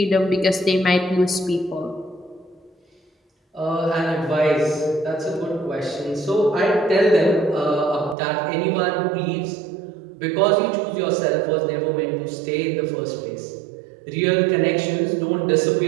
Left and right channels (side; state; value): left; drops out; at 8.2 s